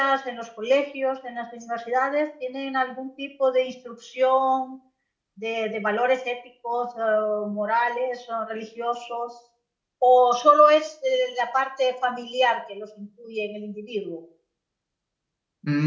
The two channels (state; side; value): identical; both; correlation 1.00